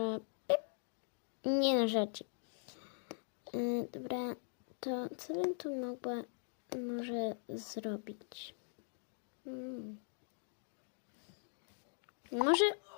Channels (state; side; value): silent; right; digital silence